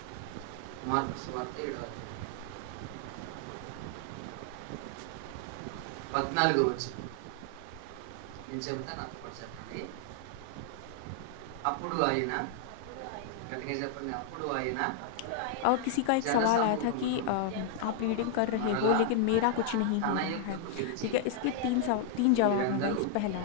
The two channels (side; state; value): both; different; correlation 0.00